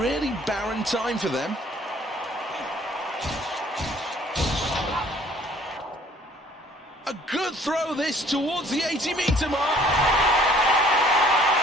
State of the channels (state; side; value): normal; both; correlation 0.56